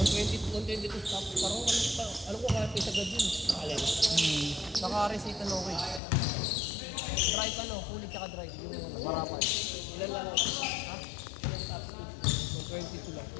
to stop. Parang alam ko kaya pa isagad yun. Alin? Naka-receipt ano ko eh. Drive ano, kulit tsaka drive. Yung marapan. Ilan lang ako? Ha? Ilan stop speed? 122 lang.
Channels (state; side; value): drops out; right; at 6.0 s